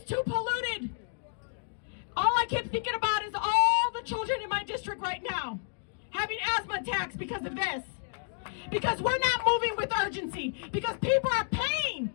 too polluted. All I keep thinking about is all the children in my district right now having asthma attacks because of this. Because we're not moving with urgency. Because people are paying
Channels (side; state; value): right; silent; digital silence